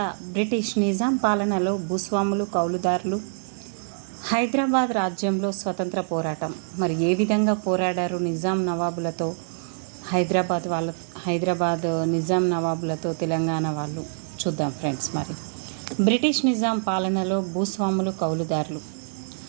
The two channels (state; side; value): silent; left; digital silence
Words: బ్రిటిష్ నిజాం పాలనలో భూస్వాములు, కౌలుదారులు, హైదరాబాద్ రాజ్యంలో స్వతంత్ర పోరాటం మరి ఏ విధంగా పోరాడారు నిజాం నవాబులతో, హైదరాబాద్ నిజాం నవాబులతో తెలంగాణ వాళ్ళు చూద్దాం ఫ్రెండ్స్. మరి బ్రిటిష్ నిజాం పాలనలో భూస్వాములు, కౌలుదారులు.